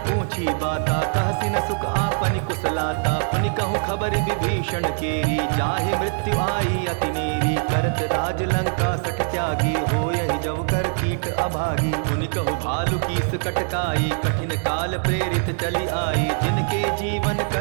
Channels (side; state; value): left; silent; digital silence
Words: पूछी बाता, कहसि न सुख आपनि कुशलाता। पुनि कहूँ खबर विभीषण केरी, जाहि मृत्यु आई अति नेरी। करत राज लंका सठ त्यागी, होयहि जब कर कीट अभागी। पुनि कहूँ भालु कीस कटकाई, कठिन काल प्रेरित चली आई। जिनके जीवन